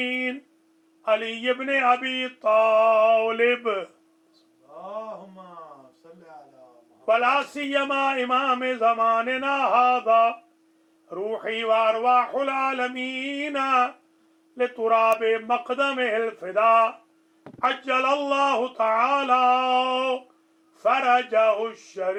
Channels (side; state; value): both; identical; correlation 1.00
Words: علي بن أبي طالب اللهم صل على محمد ولا سيما إمام زماننا هذا روحي وأرواح العالمين لتراب مقدمه الفداء عجل الله تعالى فرجه